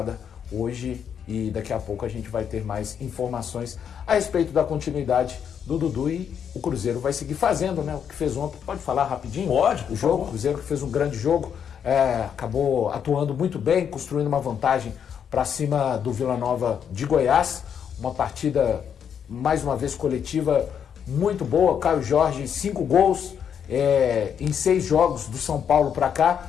hoje e daqui a pouco a gente vai ter mais informações a respeito da continuidade do Dudu e o Cruzeiro vai seguir fazendo, né? O que fez ontem, pode falar rapidinho? Pode, o jogo, o Cruzeiro que fez um grande jogo, acabou atuando muito bem, construindo uma vantagem para cima do Vila Nova de Goiás, uma partida mais uma vez coletiva muito boa, Caio Jorge 5 gols em 6 jogos do São Paulo para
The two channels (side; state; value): right; quieter; 8.0 dB